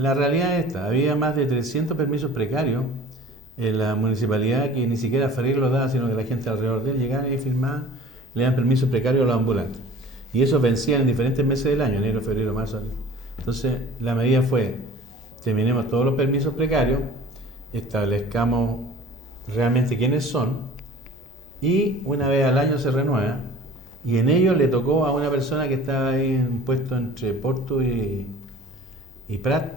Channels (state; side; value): normal; both; correlation 0.45